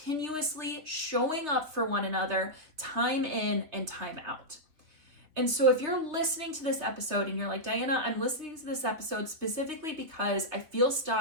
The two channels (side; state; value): left; late; 3.4 ms